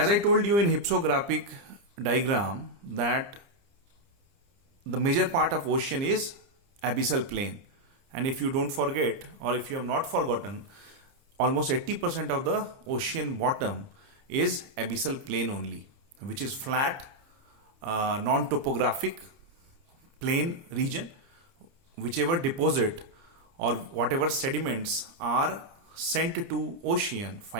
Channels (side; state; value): left; late; 30 ms